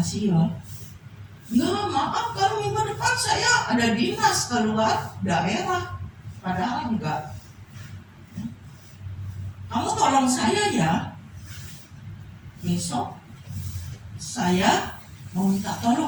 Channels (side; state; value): both; identical; correlation 1.00